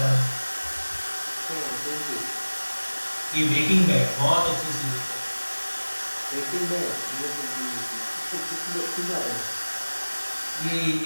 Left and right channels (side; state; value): both; inverted; correlation -1.00